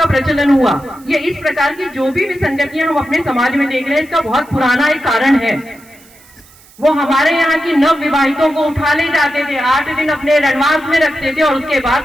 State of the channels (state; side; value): noise; right; hiss, 26 dB below the sound